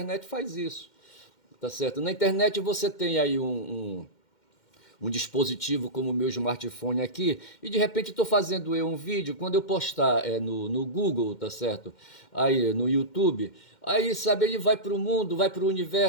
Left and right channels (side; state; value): right; late; 2.1 ms